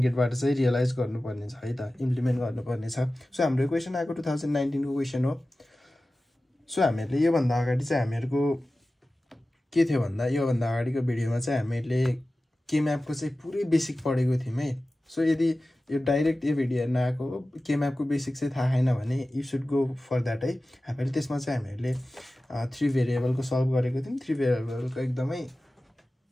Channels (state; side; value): normal; both; correlation 0.96